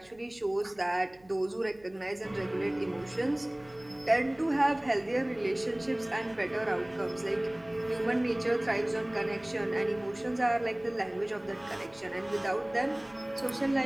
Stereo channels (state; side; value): noise; right; hum, 29 dB below the sound